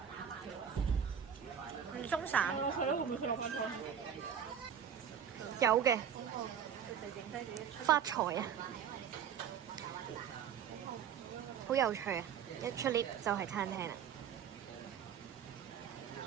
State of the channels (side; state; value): left; quieter; 8.2 dB